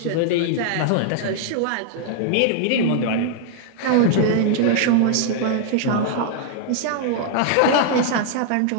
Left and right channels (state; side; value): different; both; correlation -0.01